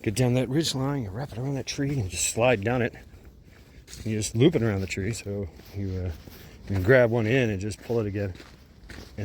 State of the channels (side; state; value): both; identical; correlation 1.00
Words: Get down that ridge line, you wrap it around that tree and just slide down it. And you just loop it around the tree, so you can grab one end and just pull it again.